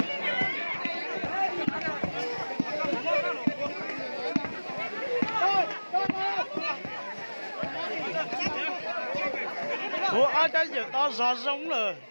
Ủa ai cái gì to gió giống rồi.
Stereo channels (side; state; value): both; inverted; correlation -1.00